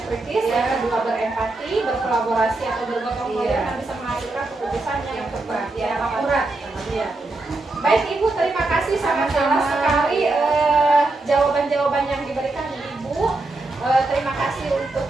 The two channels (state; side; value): quieter; left; 3.0 dB